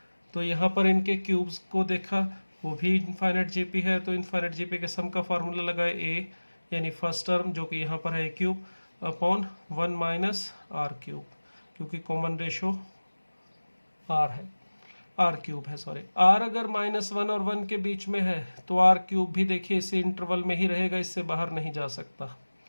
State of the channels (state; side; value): inverted; both; correlation -1.00